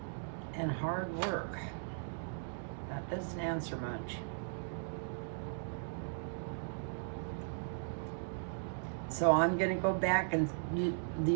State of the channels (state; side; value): silent; left; digital silence